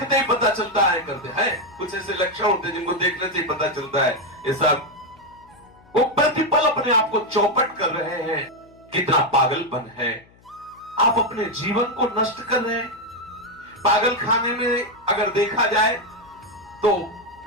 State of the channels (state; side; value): noise; left; hum, 28 dB below the sound